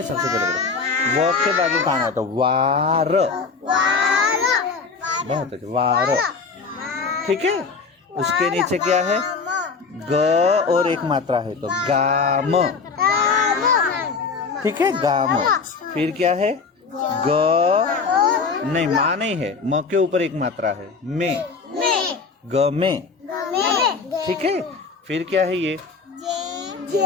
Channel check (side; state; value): right; quieter; 4.8 dB